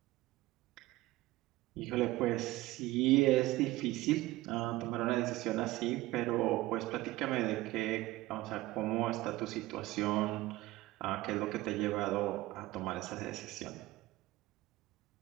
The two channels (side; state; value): left; quieter; 18.1 dB